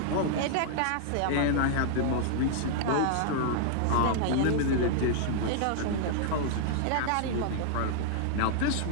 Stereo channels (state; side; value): different; both; correlation -0.01